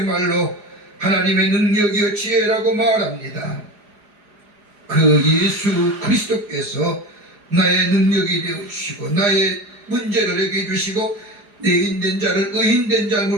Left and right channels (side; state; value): left; late; 4.9 ms